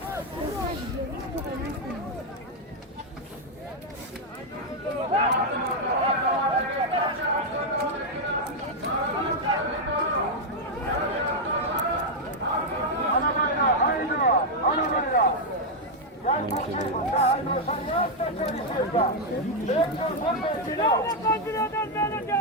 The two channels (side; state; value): both; normal; correlation 0.00